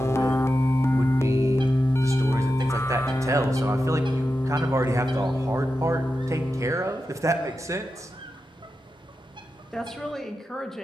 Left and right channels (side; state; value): both; normal; correlation 0.90